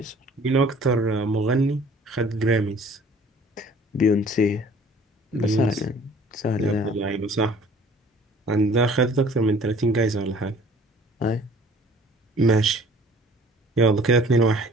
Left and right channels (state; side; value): normal; both; correlation 0.52